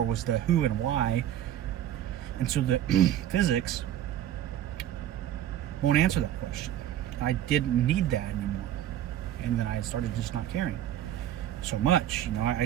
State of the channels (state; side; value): quieter; left; 11.5 dB